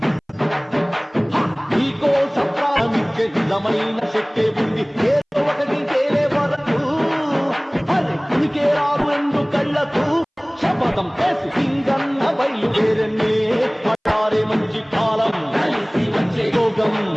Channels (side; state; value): both; identical; correlation 1.00